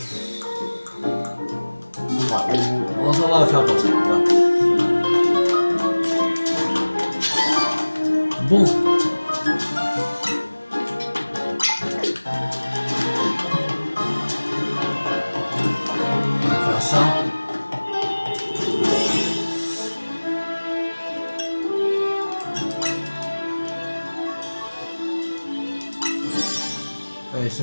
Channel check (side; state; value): both; inverted; correlation -1.00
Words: On s'en va faire comme ça. Voilà. Bon. On va faire ça. Allez,